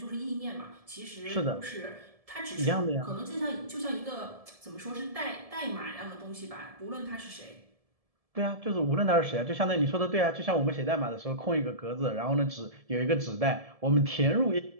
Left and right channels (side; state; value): left; late; 1.7 ms